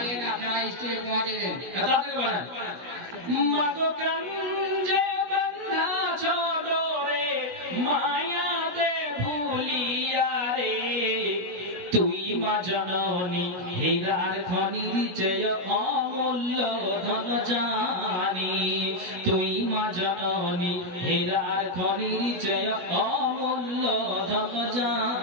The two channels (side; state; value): left; late; 16 ms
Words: আপনারা স্টেজে পৌঁছে দেন, তাড়াতাড়ি করেন। মাগো কাঞ্জে বন্ধা ছোড়ো রে, মায়াতে ভুলিয়া রে, তুই মা জননী হীরার খনির চেয়ে অমূল্য ধন জানি, তুই মা জননী হীরার খনির চেয়ে অমূল্য ধন